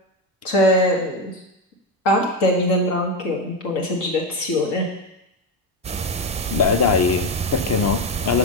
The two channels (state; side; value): normal; both; correlation 0.12